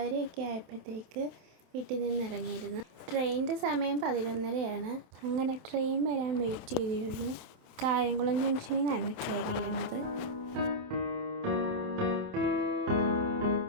ആയപ്പോഴത്തേക്ക് വീട്ടിൽ നിന്ന് ഇറങ്ങിയിരുന്നു. ട്രെയിനിൻ്റെ സമയം 11:30. അങ്ങനെ ട്രെയിൻ വരാൻ വെയിറ്റ് ചെയ്തിരുന്നു. കായംകുളം ജംഗ്ഷനിൽ നിന്നാണ് കയറിയിരുന്നത്.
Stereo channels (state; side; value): late; left; 28 ms